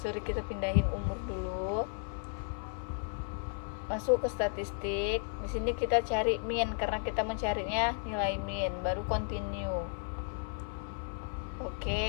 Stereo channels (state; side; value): silent; right; 55 dB below the other